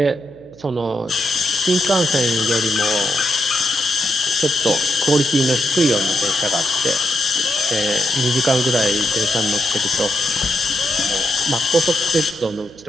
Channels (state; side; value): noise; right; hum, 25 dB below the sound